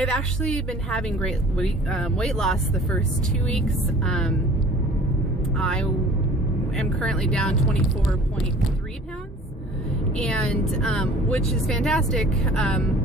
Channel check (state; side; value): normal; both; correlation 0.49